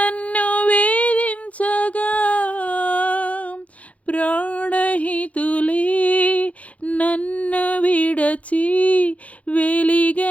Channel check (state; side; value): late; right; 0.066 ms